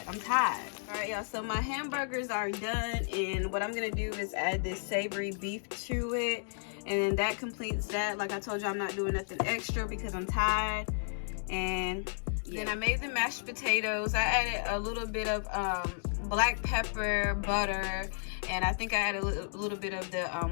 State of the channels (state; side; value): silent; right; digital silence